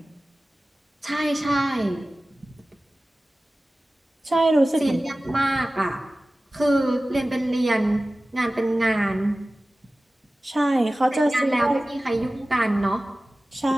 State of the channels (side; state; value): both; normal; correlation 0.97